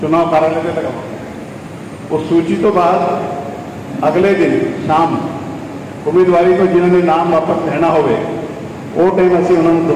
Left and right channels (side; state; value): both; identical; correlation 1.00